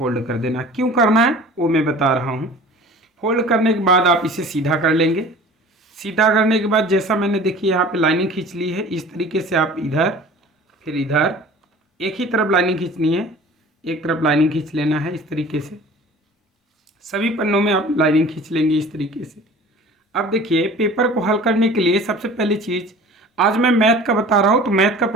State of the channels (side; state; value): both; normal; correlation 0.43